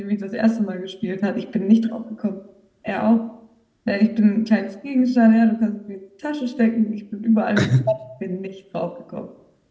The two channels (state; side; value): identical; both; correlation 1.00